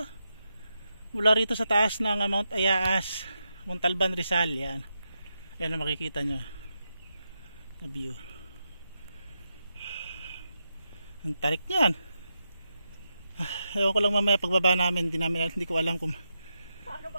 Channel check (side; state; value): both; inverted; correlation -0.86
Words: Mula rito sa taas ng Mount Ayaas, Montalban, Rizal. Yan. Yan ang makikita nyo na view. Ang tarik niyan. Ewan ko lang mamaya pagbaba namin. Hindi ko alam kung